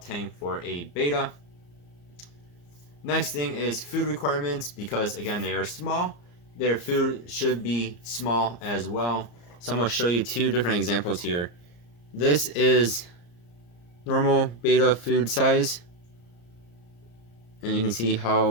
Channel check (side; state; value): right; late; 34 ms